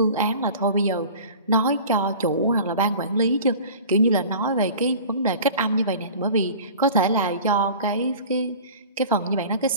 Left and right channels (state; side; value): inverted; both; correlation -0.41